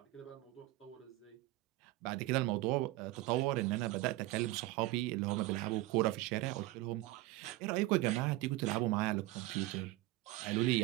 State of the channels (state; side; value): quieter; left; 17.9 dB